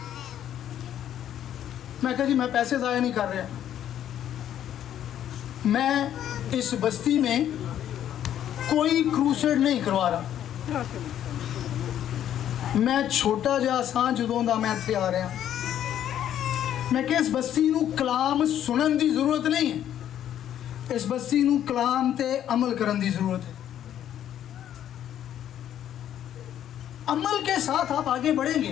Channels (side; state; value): right; quieter; 10.7 dB